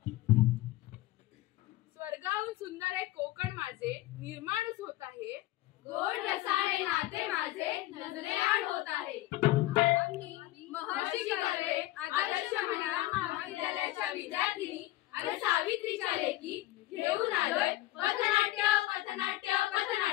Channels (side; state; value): right; quieter; 16.6 dB